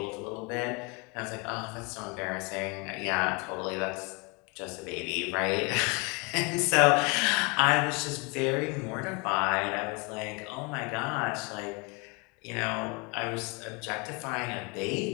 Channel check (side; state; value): right; quieter; 29.8 dB